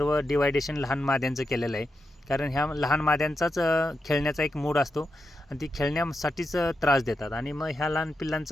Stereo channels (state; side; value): normal; both; correlation 0.86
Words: डिवायडेशन लहान माद्यांचं केलेलं आहे. कारण ह्या लहान माद्यांचाच खेळण्याचा एक मूड असतो आणि ती खेळण्यासाठीच त्रास देतात. आणि मग ह्या लहान